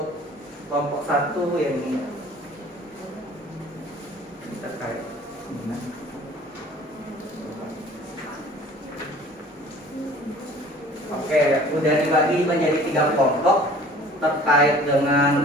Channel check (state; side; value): normal; both; correlation 0.49